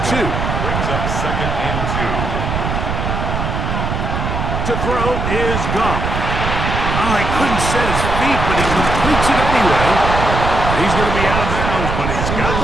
2. Brings up 2nd and 2. To throw is Goff. Oh, he couldn't set his feet, but he completes it anyway. He's going to be out of bounds, but he's got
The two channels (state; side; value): noise; right; rumble, 2 dB below the sound